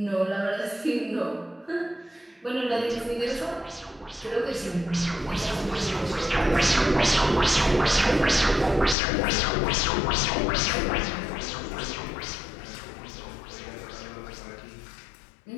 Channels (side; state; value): right; drops out; at 9.0 s